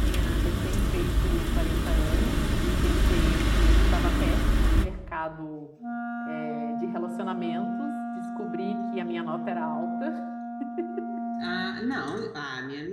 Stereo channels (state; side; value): identical; both; correlation 1.00